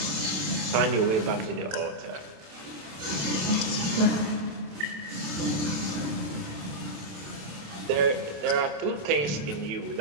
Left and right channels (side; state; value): left; late; 27 ms